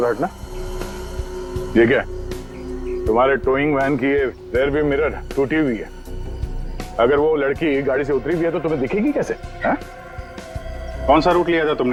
हटना। ये क्या है? तुम्हारे टोइंग वैन की ये रेयर व्यू मिरर टूटी हुई है। अगर वो लड़की गाड़ी से उतरी भी है तो तुम्हें दिखेगी कैसे? है? कौन सा रूट लिया था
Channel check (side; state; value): both; identical; correlation 1.00